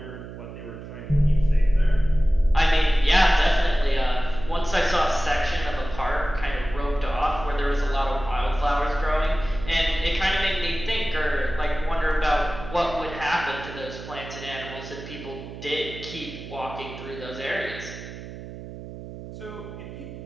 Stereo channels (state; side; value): noise; right; hum, 12 dB below the sound